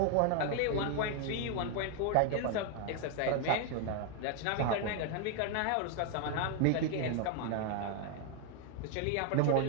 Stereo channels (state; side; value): different; both; correlation 0.00